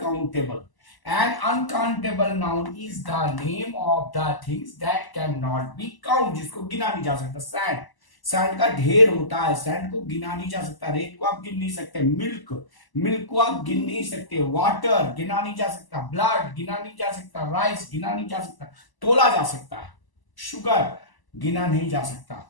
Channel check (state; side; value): late; right; 1.0 ms